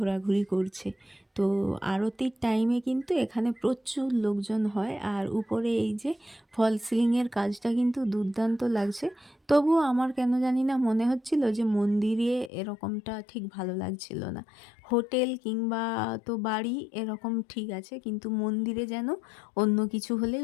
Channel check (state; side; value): drops out; right; at 12.5 s